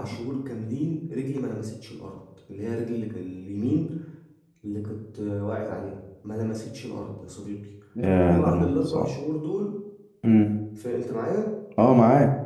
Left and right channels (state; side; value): identical; both; correlation 1.00